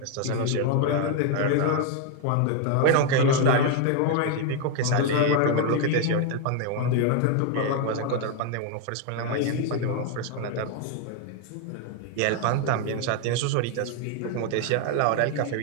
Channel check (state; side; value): different; both; correlation 0.00